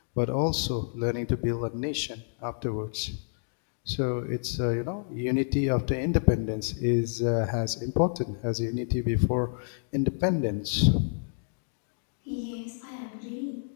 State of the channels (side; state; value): right; silent; digital silence